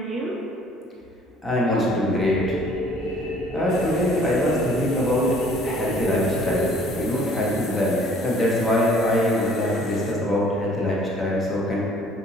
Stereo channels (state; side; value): normal; both; correlation 0.56